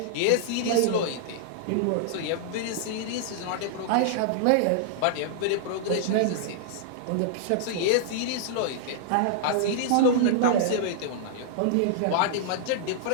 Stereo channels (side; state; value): both; different; correlation -0.01